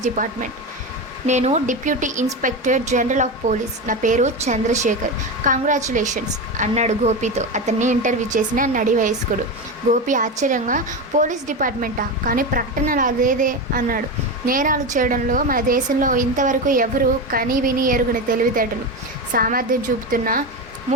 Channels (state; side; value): normal; both; correlation 0.18